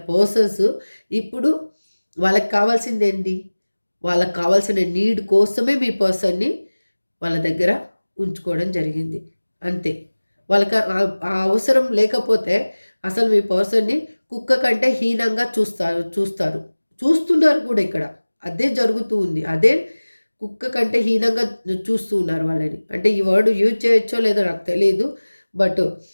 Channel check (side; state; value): both; inverted; correlation -1.00